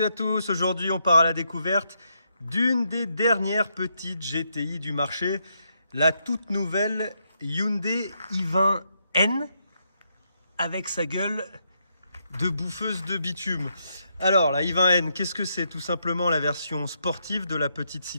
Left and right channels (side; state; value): both; inverted; correlation -0.79